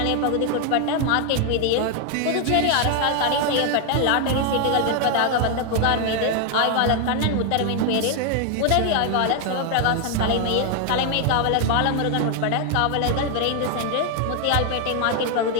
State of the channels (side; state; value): both; different; correlation 0.00